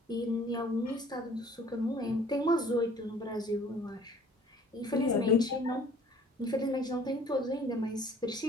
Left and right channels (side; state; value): both; normal; correlation 0.52